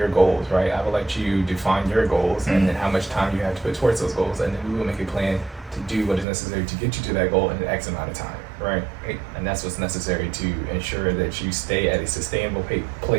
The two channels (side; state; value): left; drops out; at 6.2 s